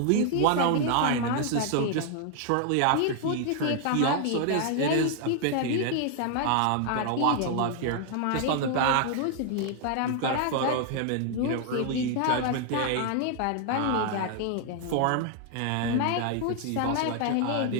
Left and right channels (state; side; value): different; both; correlation 0.00